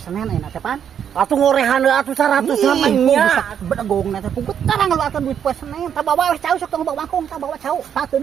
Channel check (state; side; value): quieter; left; 8.6 dB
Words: ayeuna teh pan. Atuh ngorehan atuh 100 namanya. Bedegong na teh pugut karang ngaluarkeun duit poe Senen. Tah bawa we cau sok tong bawa mangkung tah bawa cau.